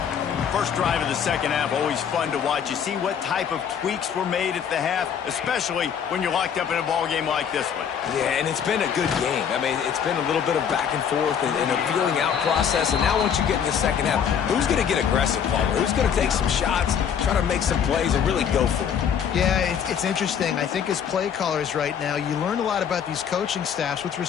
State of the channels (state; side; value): quieter; right; 7.9 dB